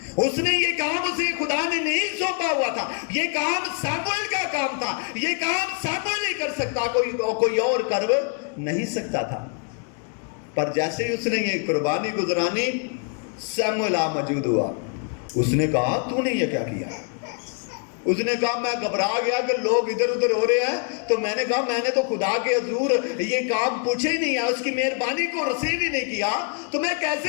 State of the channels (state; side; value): quieter; right; 38.6 dB